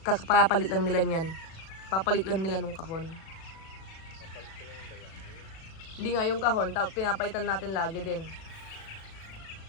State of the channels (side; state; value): right; late; 37 ms